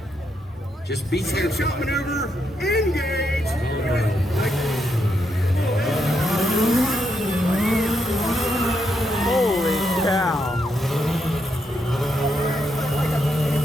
Just be careful. Slingshot maneuver, engage. Holy cow.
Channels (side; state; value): both; normal; correlation 0.80